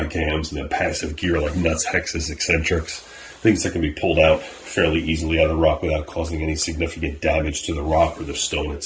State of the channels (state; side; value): identical; both; correlation 1.00